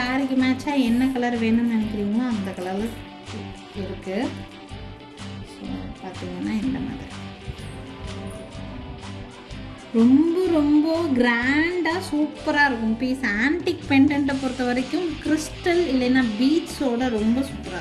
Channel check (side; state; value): both; identical; correlation 1.00